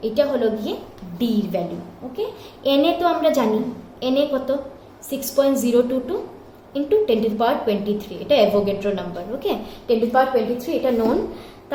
এটা হলো গিয়ে ডি এর ভ্যালু। ওকে, এনএ তো আমরা জানি, এনএ কত? 6.022 ইন্টু 10⁻23, এটা অ্যাভোগাড্রো নাম্বার। ওকে, 10⁻23 এটা নোন।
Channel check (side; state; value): both; identical; correlation 1.00